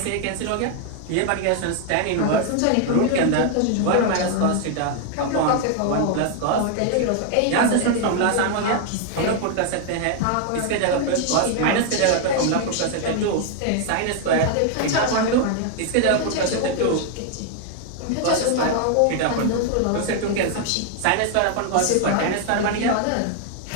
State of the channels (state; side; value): different; both; correlation 0.00